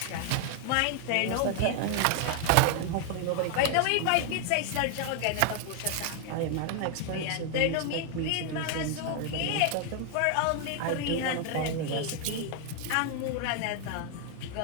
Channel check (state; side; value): different; both; correlation 0.00